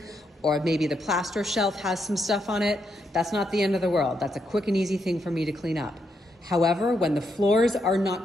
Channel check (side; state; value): both; normal; correlation 0.80